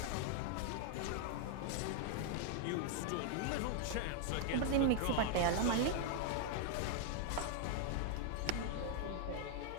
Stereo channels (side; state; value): both; different; correlation 0.00